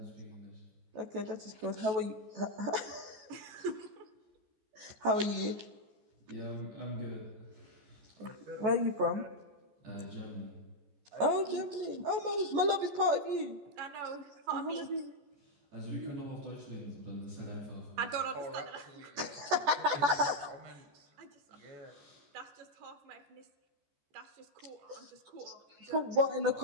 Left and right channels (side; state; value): left; late; 14 ms